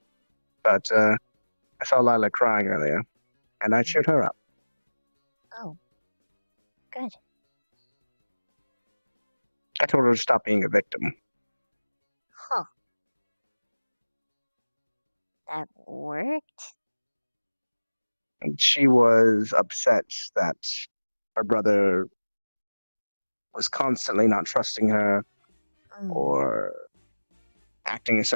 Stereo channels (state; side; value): inverted; both; correlation -1.00